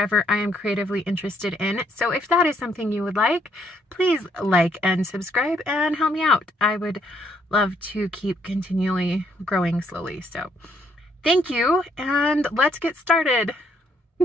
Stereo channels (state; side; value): normal; both; correlation 0.70